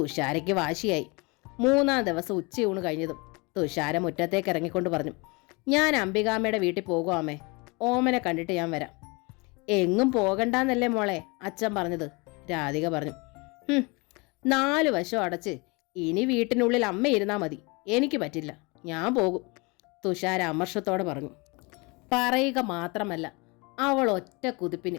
വാശിയായി. 3-ാം ദിവസം ഉച്ചയൂണ് കഴിഞ്ഞതും തുഷാര മുറ്റത്തേക്ക് ഇറങ്ങിക്കൊണ്ട് പറഞ്ഞു, ഞാൻ അംബികാമ്മയുടെ വീട്ടിൽ പോകുവാമേ, ഓമനെ കണ്ടിട്ട് ഞാൻ വരാം. എങ്ങും പോകണ്ടെന്നല്ലേ മോളെ അച്ഛൻ പറഞ്ഞത്, രാധിക പറഞ്ഞു. 4 വശം അടച്ച് ഇനി വീട്ടിനുള്ളിൽ അമ്മ ഇരുന്നാൽ മതി, എനിക്ക് പറ്റില്ല, ഞാൻ പോകും, തുഷാര അമർഷത്തോടെ പറഞ്ഞു. പറയുക മാത്രമല്ല, അവൾ ഒറ്റ കുതിപ്പിന്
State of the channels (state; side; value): quieter; right; 27.8 dB